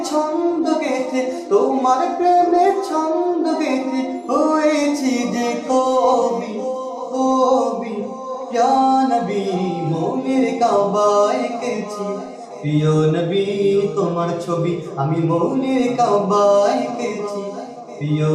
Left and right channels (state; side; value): identical; both; correlation 1.00